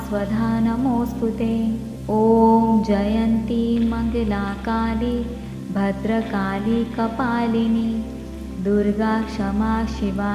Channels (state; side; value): identical; both; correlation 1.00